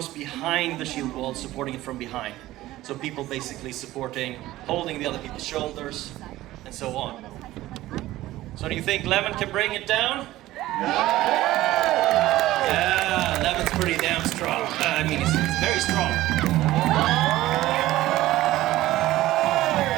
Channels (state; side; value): quieter; left; 16.1 dB